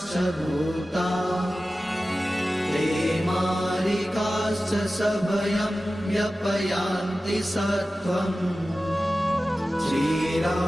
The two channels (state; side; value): normal; both; correlation 0.95